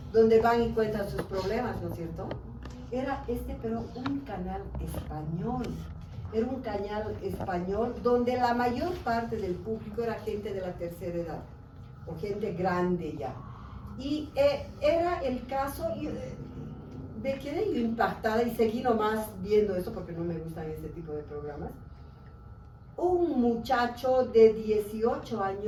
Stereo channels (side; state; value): both; identical; correlation 1.00